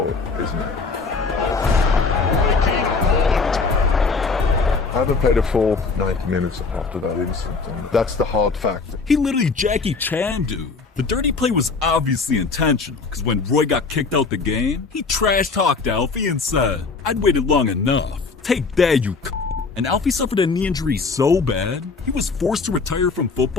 isn't it? I haven't played a full 90 minutes after that incident. And that's the hard fact. He literally Jackie Chan, dude. The dirty play was obviously intentional, because when Roy got kicked out the game, he trash-talked Alfie and said, "I'd waited long enough. Take that, you c***." And Alfie suffered a knee injury so bad, he was forced to retire from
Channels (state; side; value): quieter; right; 4.4 dB